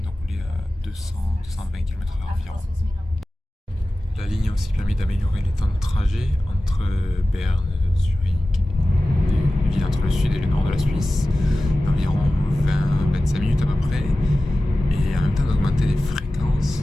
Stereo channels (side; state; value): both; normal; correlation 0.95